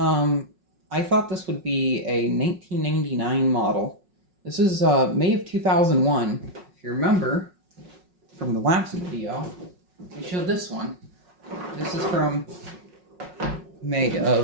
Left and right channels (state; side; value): late; left; 5.5 ms